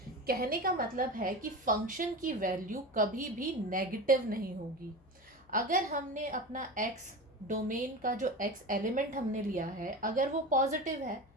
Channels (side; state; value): left; noise; hum, 29 dB below the sound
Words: कहने का मतलब है कि function की value कभी भी negative नहीं होगी। अगर हमने अपना x डोमेन का जो x एलिमेंट हमने लिया है, अगर वो पॉजिटिव है